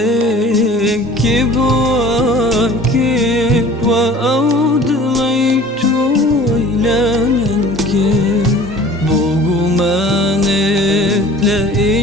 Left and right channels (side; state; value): both; normal; correlation 0.46